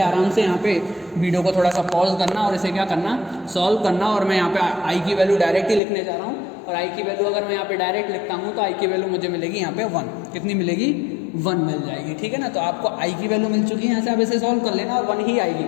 आराम से यहाँ पे वीडियो को थोड़ा सा पॉज करना और इसे क्या करना सॉल्व करना। और मैं यहाँ पे आई की वैल्यू डायरेक्ट ही लिखने जा रहा हूँ और आई की वैल्यू अगर मैं यहाँ पे डायरेक्ट लिखता हूँ तो आई की वैल्यू मुझे मिलेगी यहाँ पे 1। कितनी मिलेगी 1 मिल जाएगी, ठीक है ना। तो आपको आई की वैल्यू मिल चुकी है, यहाँ से आप इसे सॉल्व कर लेना और 1 ही आएगी,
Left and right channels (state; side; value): drops out; right; at 5.8 s